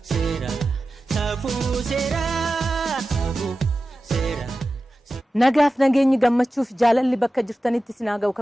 sera. Safu sera. Safu sera. Nagaaf nageenyi gammachuuf jaalalli bakka jirtanitti sinaa ga'u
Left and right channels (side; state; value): both; normal; correlation 0.94